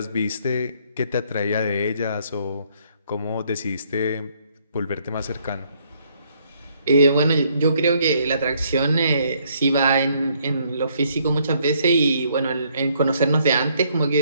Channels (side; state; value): both; inverted; correlation -0.68